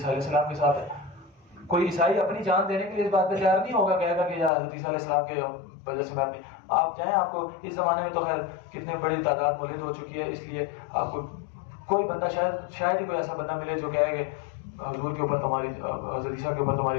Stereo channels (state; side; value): drops out; right; at 4.5 s